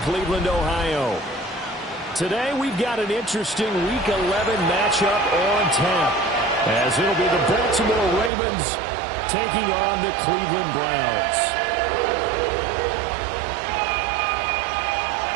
Cleveland, Ohio. Today we've got an interesting Week 11 matchup on tap, as it'll be the Baltimore Ravens taking on the Cleveland Browns.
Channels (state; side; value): drops out; left; at 8.3 s